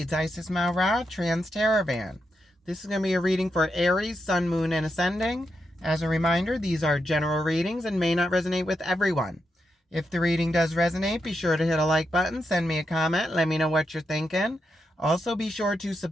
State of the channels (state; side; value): normal; both; correlation 0.84